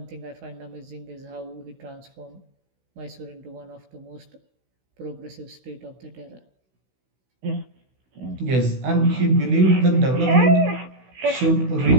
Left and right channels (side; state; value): left; late; 16 ms